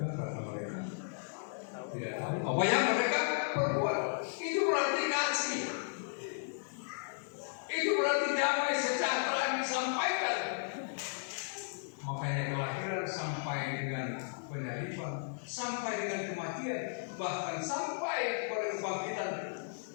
karena mereka tidak tahu apa yang mereka perbuat. Itu berarti kasih. Itu berarti damai sejahtera yang disampaikan. Makanya kelahiran sampai dengan penyalipan, sampai dengan kematian, bahkan sampai kepada kebangkitan,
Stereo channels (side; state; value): right; silent; digital silence